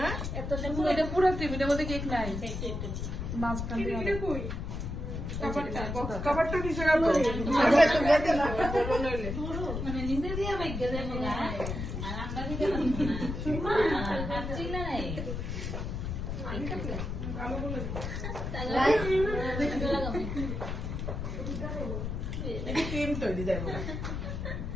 এত এটা পুরো ক্রিম এটার মধ্যে কেক নাই মাঝখান দিয়ে কভারটা নিচে রাখো মানে নিজে দিয়ে বাইকে দেবো না আর আমরা দিতে পারছি না নাই ক্রিম তৈরি যাবো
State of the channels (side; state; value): left; noise; rumble, 4 dB below the sound